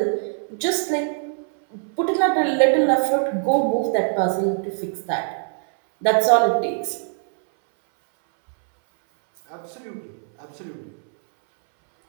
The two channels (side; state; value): left; silent; 62 dB below the other